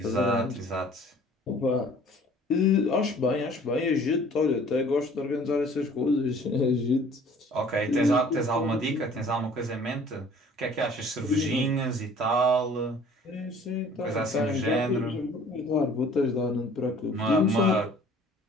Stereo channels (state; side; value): normal; both; correlation 0.52